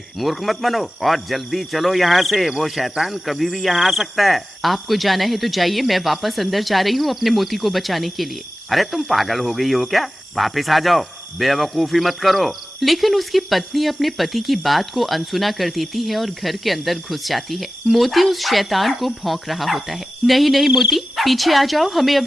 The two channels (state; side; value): normal; both; correlation 0.95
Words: मूर्ख मत बनो और जल्दी चलो यहाँ से। वो शैतान कभी भी यहाँ आ सकता है। आपको जाना है तो जाइए, मैं वापस अंदर जा रही हूँ अपने मोती को बचाने के लिए। अरे तुम पागल हो गई हो क्या? वापस आ जाओ, बेवकूफी मत करो। लेकिन उसकी पत्नी अपने पति की बात को अनसुना कर देती है और घर के अंदर घुस जाती है। मोती उस शैतान को भौंक रहा होता है। नहीं मोती, पीछे आ जाओ, हमें